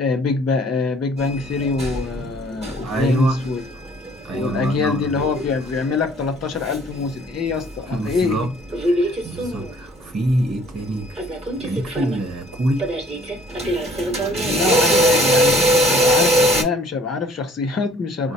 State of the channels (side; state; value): both; normal; correlation 0.56